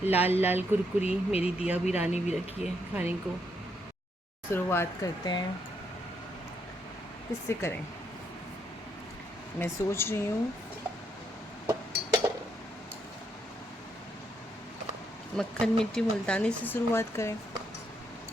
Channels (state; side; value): normal; both; correlation 0.76